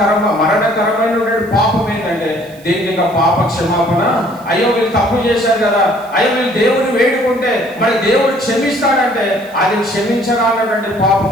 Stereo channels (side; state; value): right; noise; hiss, 25 dB below the sound